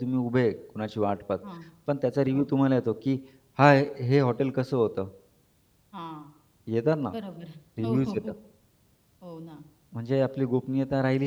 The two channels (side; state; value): both; identical; correlation 1.00